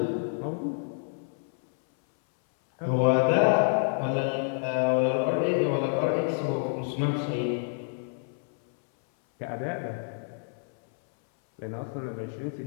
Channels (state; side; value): silent; right; 59 dB below the other